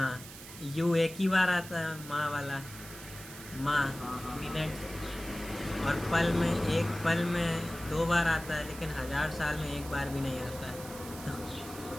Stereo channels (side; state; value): right; noise; hiss, 14 dB below the sound